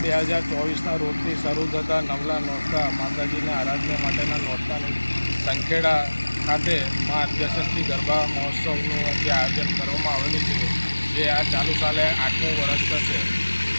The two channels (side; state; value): both; inverted; correlation -1.00